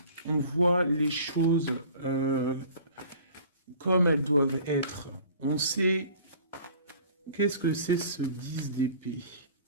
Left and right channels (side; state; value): both; inverted; correlation -0.48